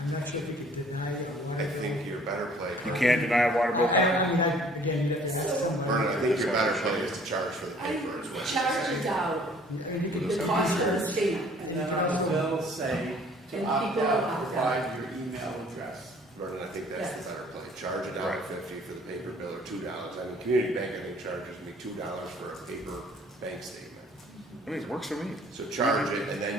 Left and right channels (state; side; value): normal; both; correlation 0.55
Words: not sure if you could deny it or I why. think you're better play. You can't deny a water bill copy. I mean, again, that's something. Vernon, I think your better play is to charge for the I paper, is what you're charge saying. it out, I mean, you could the cost of the state. And then on the bill say to And opt people out, opt provide your email address. Vernon, I think that's the Yes. better play. Charge $1.50 Right. for the paper bill, or $2. I mean, community bank, I think, charges me $2 for a paper bank statement. I mean, it works for me. So charge it, and